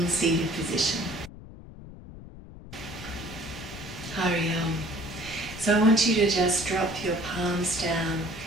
seated position. Hari Om. So I want you to just drop your palms down,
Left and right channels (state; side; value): noise; left; rumble, 15 dB below the sound